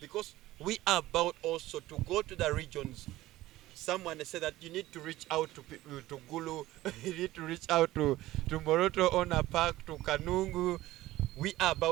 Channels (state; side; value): quieter; left; 16.4 dB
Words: we are about also to go to the regions. Someone said that you need to reach out to Gulu, you need to reach out to Moroto Ona Park, to Kanungu. We are